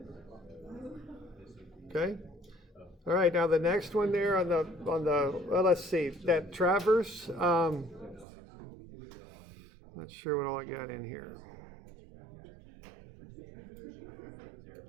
Okay. All right, now the next one there on the well, let's see, that traverse, not sure what all I got in here.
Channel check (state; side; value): drops out; left; at 8.2 s